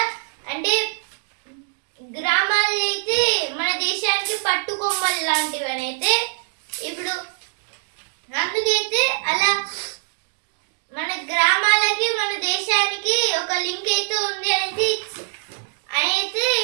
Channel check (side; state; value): left; silent; digital silence